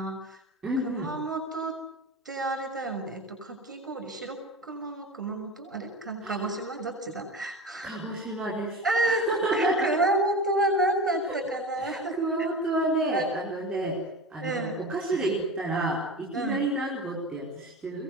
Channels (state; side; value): normal; both; correlation 0.30